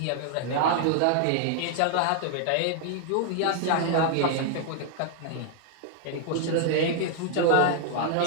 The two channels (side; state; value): both; different; correlation 0.00